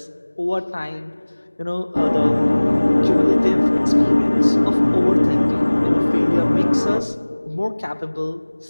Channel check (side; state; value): both; inverted; correlation -1.00